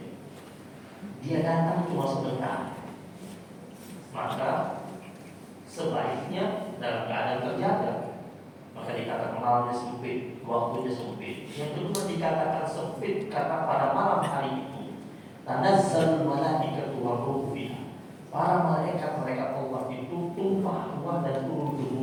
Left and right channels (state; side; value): identical; both; correlation 1.00